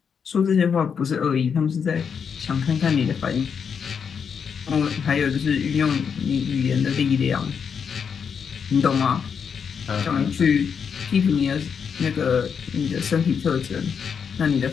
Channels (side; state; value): right; quieter; 6.7 dB